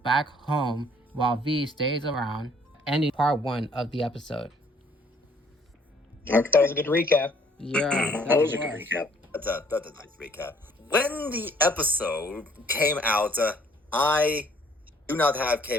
home while V stays around, ending part 1 of the episode. Okay. That was a good recap. Yeah, That was a good recap. That's a nice recap. When the episode came out, I do not have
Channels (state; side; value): normal; both; correlation 0.61